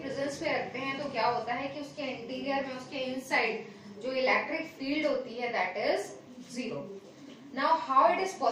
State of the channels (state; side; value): identical; both; correlation 1.00